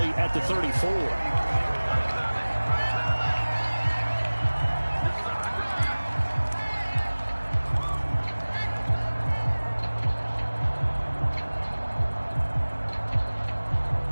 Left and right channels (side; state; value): both; inverted; correlation -1.00